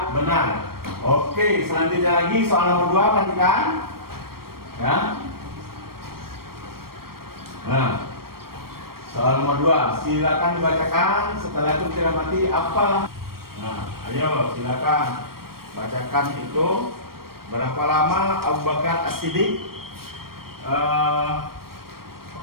benar. Oke, selanjutnya lagi soal nomor 2, perhatikan. Ya. Nah, soal nomor 2, silakan dibacakan. Setelah itu kita mati apa? Nah, ayo silakan bacakan itu. Berapa lama Abu Bakar As-Siddiq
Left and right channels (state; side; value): late; left; 0.94 ms